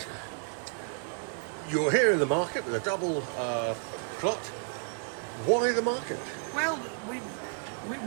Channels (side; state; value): left; silent; 57 dB below the other